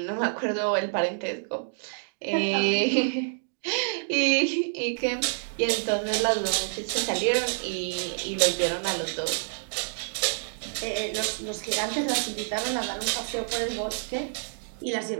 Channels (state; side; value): silent; left; digital silence